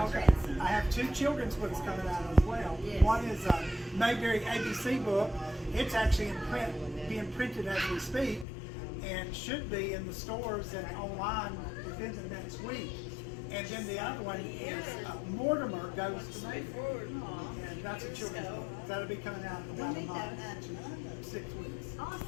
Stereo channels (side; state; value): right; drops out; at 8.5 s